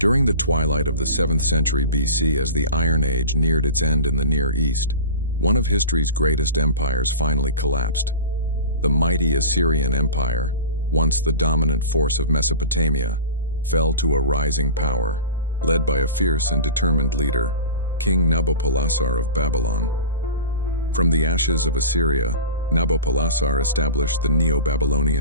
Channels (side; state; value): both; inverted; correlation -0.33